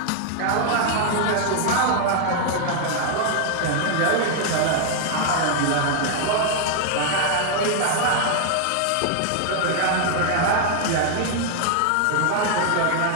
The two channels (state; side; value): different; both; correlation 0.00